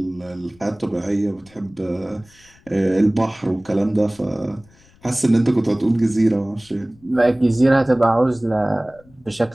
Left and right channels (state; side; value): noise; left; rumble, 29 dB below the sound